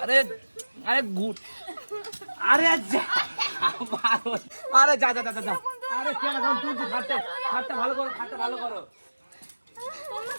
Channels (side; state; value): both; inverted; correlation -1.00